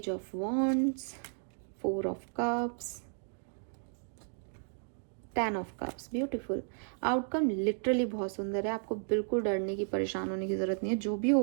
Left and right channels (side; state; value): left; silent; 55 dB below the other